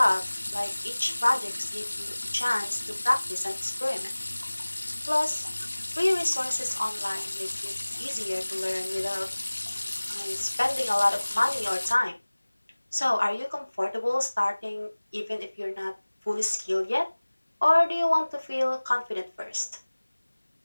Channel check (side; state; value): both; inverted; correlation -1.00